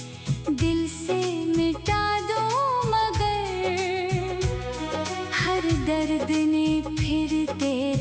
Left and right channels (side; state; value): both; identical; correlation 1.00